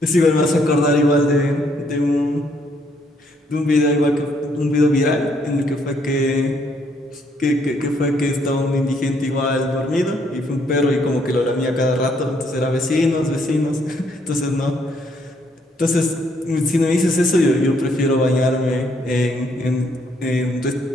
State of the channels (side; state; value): both; normal; correlation 0.70